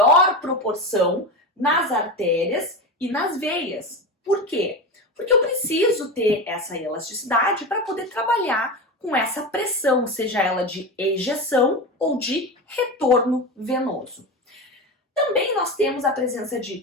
proporção nas artérias e nas veias. Por quê? Porque eu preciso ter essa elasticidade para poder trabalhar com essa pressão, seja ela de ejeção ou de retorno venoso. Também nós temos a presença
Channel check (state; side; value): normal; both; correlation 0.22